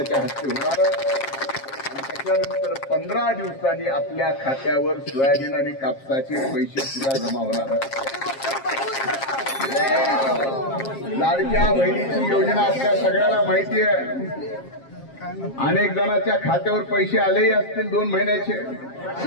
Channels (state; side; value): late; right; 7.4 ms